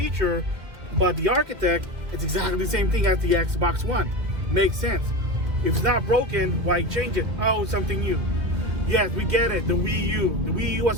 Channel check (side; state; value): left; late; 2.3 ms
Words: but the architect, it's exactly the same thing as the Xbox One. Makes sense. If it's not broken, why change it? Oh, something new. Yes, we get it, the Wii U. The Wii U was